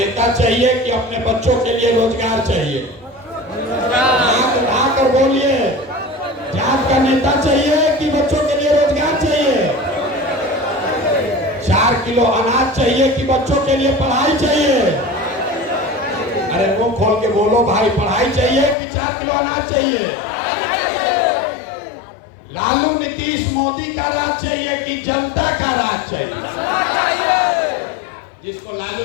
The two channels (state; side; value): drops out; right; at 18.8 s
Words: चाहिए कि अपने बच्चों के लिए रोजगार चाहिए? हाथ उठाकर बोलिए, जात का नेता चाहिए कि बच्चों के लिए रोजगार चाहिए? 4 किलो अनाज चाहिए कि बच्चों के लिए पढ़ाई चाहिए? अरे मुंह खोल के बोलो भाई, पढ़ाई चाहिए कि 4 किलो अनाज चाहिए? लालू नीतीश मोदी का राज चाहिए कि जनता का राज चाहिए? जिसको